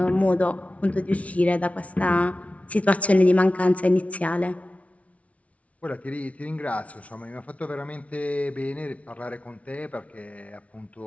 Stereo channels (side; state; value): right; late; 0.065 ms